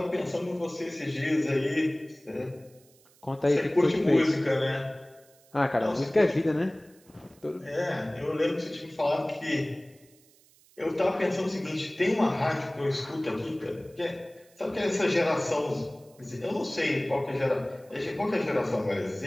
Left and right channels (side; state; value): right; noise; hiss, 29 dB below the sound